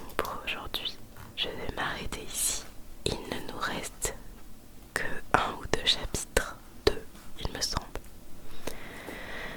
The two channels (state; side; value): identical; both; correlation 1.00